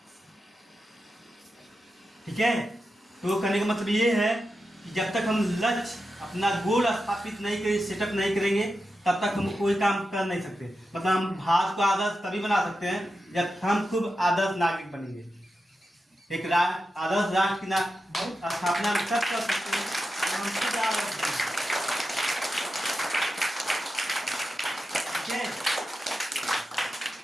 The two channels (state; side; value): normal; both; correlation 0.90